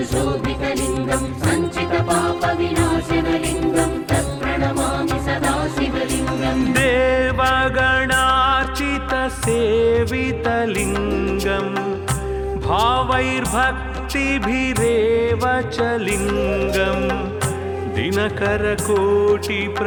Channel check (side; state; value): both; identical; correlation 1.00